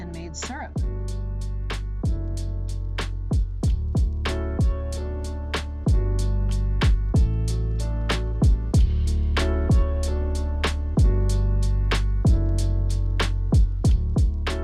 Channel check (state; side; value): identical; both; correlation 1.00